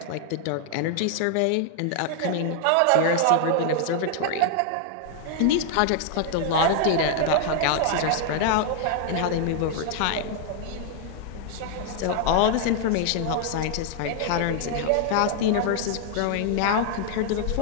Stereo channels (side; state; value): both; different; correlation 0.00